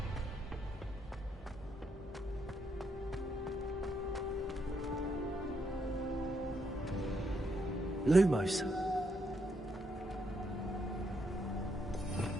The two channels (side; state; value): both; normal; correlation 0.77